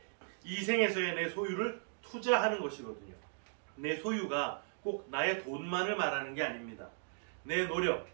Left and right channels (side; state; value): left; silent; digital silence